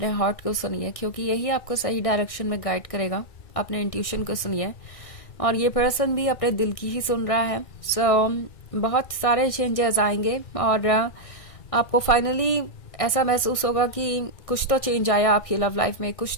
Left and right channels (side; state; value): right; late; 1.6 ms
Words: हार्ट को सुनिए, क्योंकि यही आपको सही डायरेक्शन में गाइड करेगा। अपने इंट्यूशन को सुनिए, और ये पर्सन भी अपने दिल की ही सुन रहा है। बहुत सारे चेंजेस आएंगे और आपको फाइनली ऐसा महसूस होगा कि कुछ तो चेंज आया आपकी लव लाइफ में, कुछ